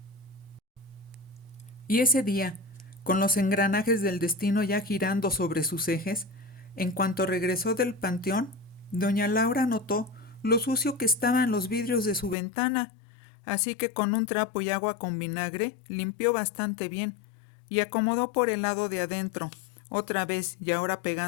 Y ese día, con los engranajes del destino ya girando sobre sus ejes, en cuanto regresó del panteón, doña Laura notó lo sucio que estaban los vidrios de su ventana, así que con un trapo y agua con vinagre limpió bastante bien y acomodó por el lado de adentro, otra vez y ahora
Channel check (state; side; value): drops out; right; at 12.4 s